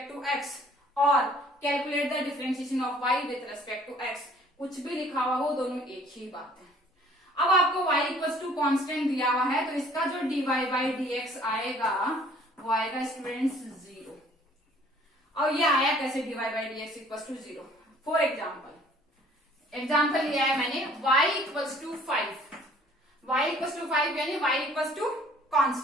to x और calculate the differentiation of y with respect to x। कुछ भी लिखा हुआ हो, दोनों एक ही बात है। अब आपको y इक्वल टू कॉन्स्टेंट दिया हुआ है, तो इसका जो dy बाई dx आएगा वो आएगा स्टूडेंट्स 0। और ये आया कैसे dy by dx equal to 0? For example लिया है मैंने y equal to 5, y equal to 5 यानी y equal to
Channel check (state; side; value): normal; both; correlation 0.56